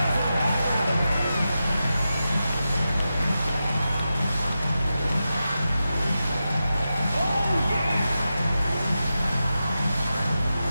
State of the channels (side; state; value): both; inverted; correlation -0.91